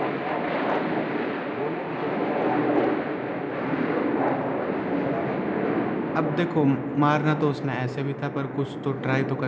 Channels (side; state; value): both; identical; correlation 1.00